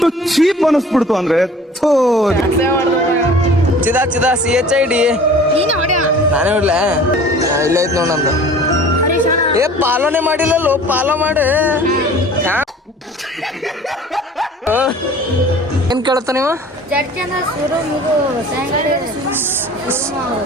ಚೀಪ್ ಅನಿಸ್ಬಿಡ್ತು ಅಂದ್ರೆ ಚಿದಾ CHID ನಾನೇ ಹೊಡ್ಲ. ಇಲ್ಲ ಐತ್ ನೋಡ್ ನಂದು. ಪಾಲೋನೆ ಮಾಡಿಲ್ಲಲ್ಲೋ, ಪಾಲೋ ಮಾಡಿ. ಏನ್ ಕೇಳತ್ತ ನೀವು?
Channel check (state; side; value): normal; both; correlation 0.46